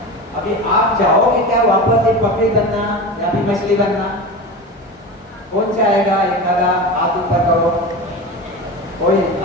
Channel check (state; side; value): normal; both; correlation 0.27